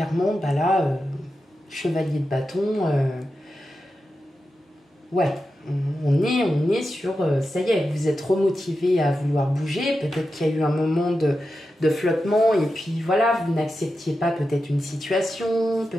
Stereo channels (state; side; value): normal; both; correlation 0.90